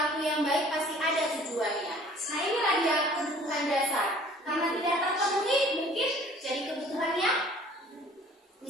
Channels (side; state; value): both; normal; correlation 0.52